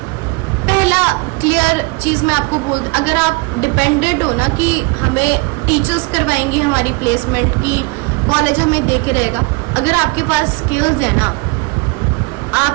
पहला क्लियर चीज़ मैं आपको बोल, अगर आप डिपेंडेंट हो ना कि हमें टीचर्स करवाएंगे हमारी प्लेसमेंट की, कॉलेज हमें देखे रहेगा, अगर आपके पास स्किल्स है ना,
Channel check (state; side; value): quieter; left; 26.2 dB